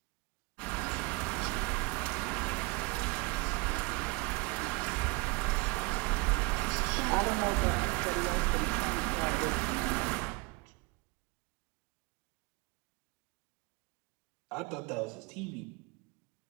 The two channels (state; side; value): quieter; left; 26.2 dB